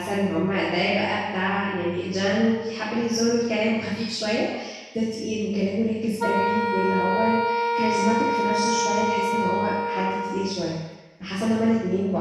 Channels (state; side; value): identical; both; correlation 1.00